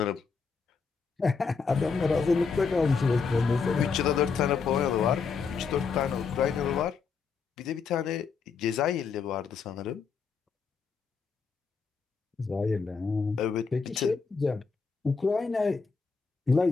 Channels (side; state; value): right; quieter; 5.3 dB